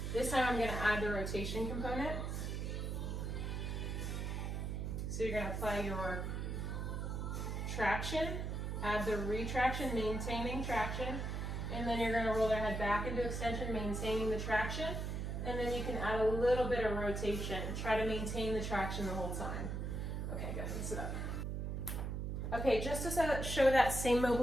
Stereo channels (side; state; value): right; noise; hum, 2 dB below the sound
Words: This time I'm going to add the rotation component. So you're going to apply your traction, add the retraction, maintaining traction, and then you're going to roll their head back into extension, maintaining the traction, and then you can add a little bit of rotation. Try to maintain the traction the whole time. Okay, go ahead and sit up. Okay, just to show that same